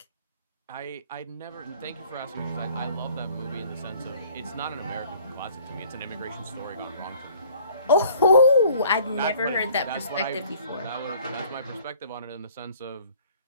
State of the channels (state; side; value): inverted; both; correlation -0.54